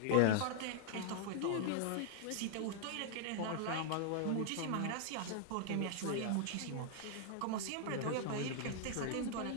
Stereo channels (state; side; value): different; both; correlation 0.00